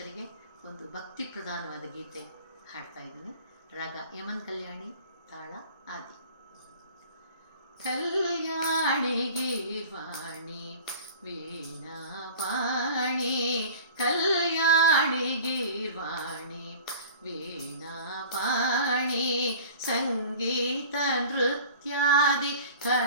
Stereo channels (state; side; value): inverted; both; correlation -0.42